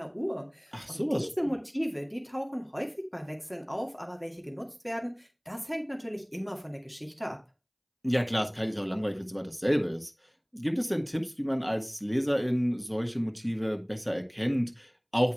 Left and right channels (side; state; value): both; identical; correlation 1.00